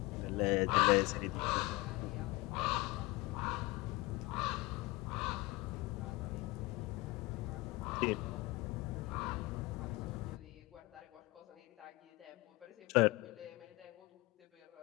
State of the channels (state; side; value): quieter; right; 22.1 dB